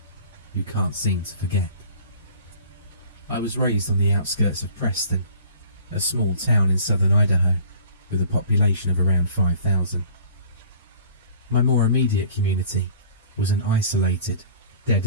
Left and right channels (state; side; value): inverted; both; correlation -0.49